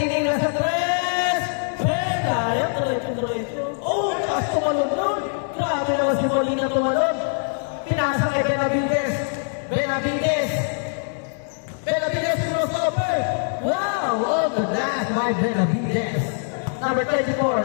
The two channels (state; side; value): silent; right; 63 dB below the other